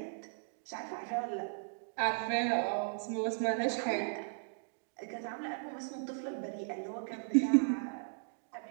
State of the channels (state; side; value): silent; left; digital silence